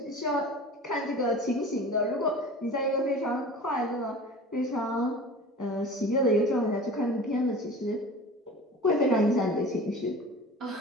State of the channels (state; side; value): normal; both; correlation 0.38